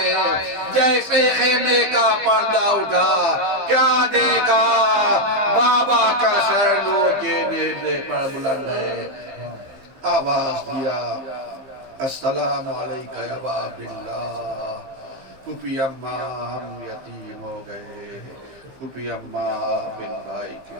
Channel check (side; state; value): left; late; 15 ms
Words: جیسے خیمے کا پردہ اٹھا، کیا دیکھا؟ بابا کا سر لو کے نیزے پر بلند ہے۔ آواز دیا السلام علیکہ یا باب اللہ۔ پھپھی اماں ہم یتیم ہو گئے، پھپھی اماں بن بھائی کے